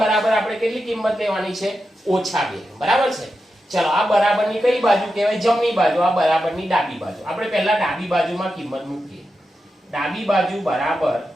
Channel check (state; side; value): normal; both; correlation 0.89